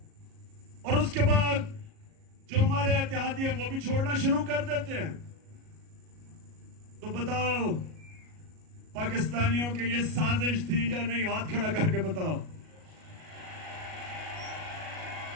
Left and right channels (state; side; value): late; left; 37 ms